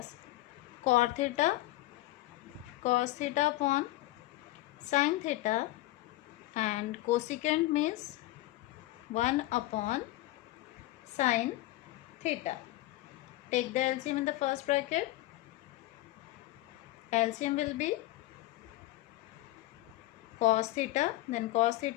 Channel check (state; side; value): quieter; right; 17.3 dB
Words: cot theta cos theta upon sin theta, and cosecant means 1 upon sin theta. Take the LCM in the first bracket. LCM will be cos theta, then cos